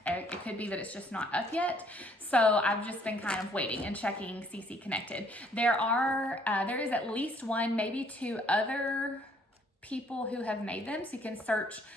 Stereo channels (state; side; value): normal; both; correlation 0.63